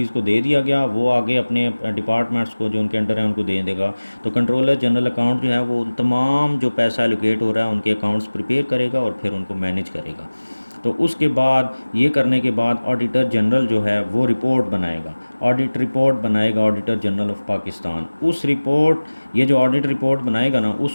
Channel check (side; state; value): both; inverted; correlation -1.00